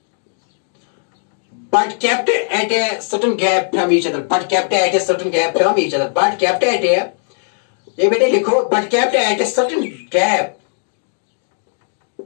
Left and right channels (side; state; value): right; silent; digital silence